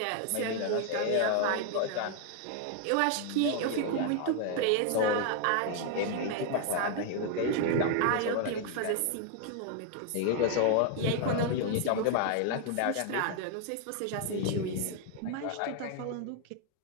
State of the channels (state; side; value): different; both; correlation 0.00